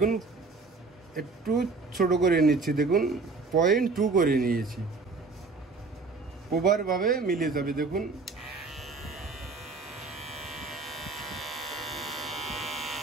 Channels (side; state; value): left; quieter; 4.0 dB